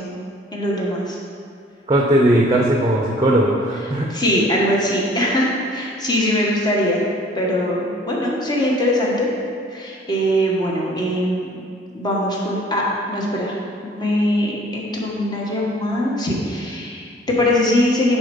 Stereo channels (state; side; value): normal; both; correlation 0.53